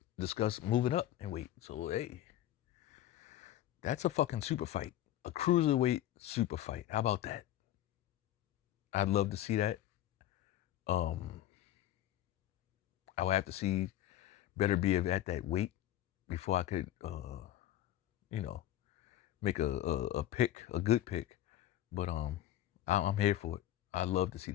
discussed moving up in weight. So hey, that's a fucking super fight. A cruiserweight super fight. How about that? I'd love to see that. I would have to see Beterbiev at that weight before I could, make a pick, a good pick. But I'm here for it. I'd love to see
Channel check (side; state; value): right; quieter; 13.0 dB